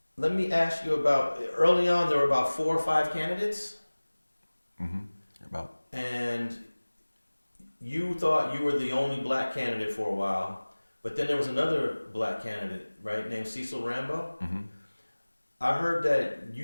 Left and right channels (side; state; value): both; inverted; correlation -1.00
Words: let me ask you about, early on there were about 4 or 5 candidates. Mm-hmm. And you thought you were the only black candidate for a while, but then there was another black candidate, right, named Cecil Rhambo. Mm-hmm. I heard that